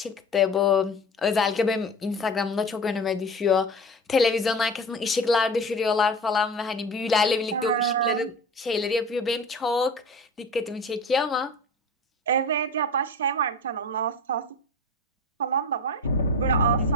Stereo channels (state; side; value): normal; both; correlation 0.32